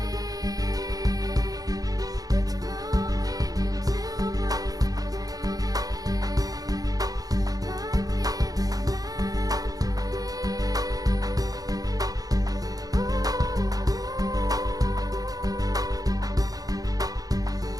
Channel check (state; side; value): late; left; 0.18 ms